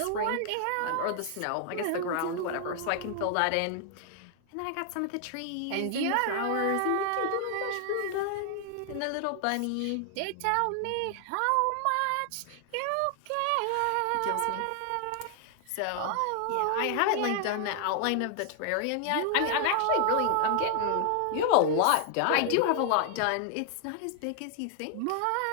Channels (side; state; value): both; different; correlation 0.00